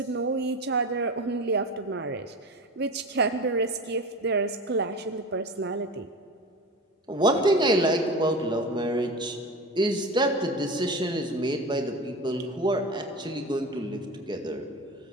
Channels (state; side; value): normal; both; correlation 0.30